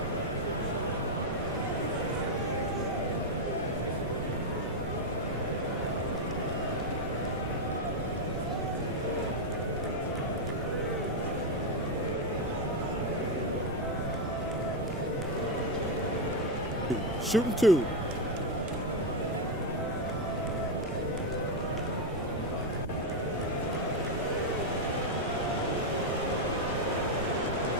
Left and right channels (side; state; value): right; noise; rumble, 8 dB below the sound